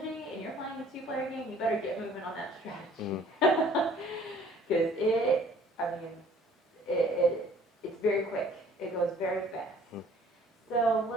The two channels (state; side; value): normal; both; correlation 0.55